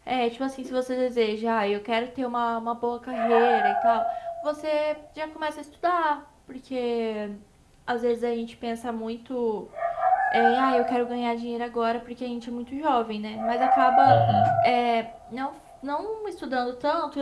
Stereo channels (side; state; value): both; identical; correlation 1.00